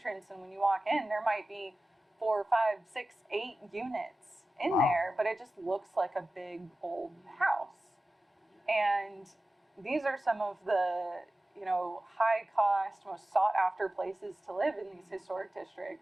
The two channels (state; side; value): normal; both; correlation 0.95